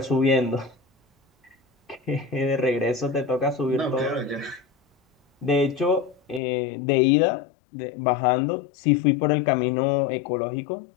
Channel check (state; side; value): drops out; right; at 6.4 s